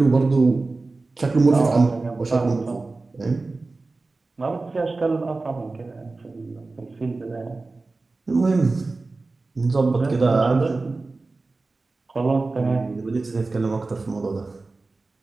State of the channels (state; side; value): quieter; left; 3.5 dB